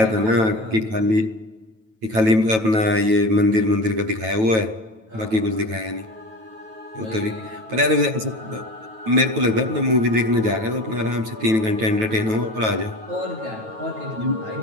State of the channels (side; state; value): left; late; 9.2 ms